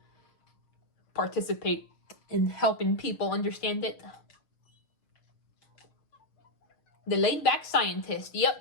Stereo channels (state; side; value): late; right; 6.6 ms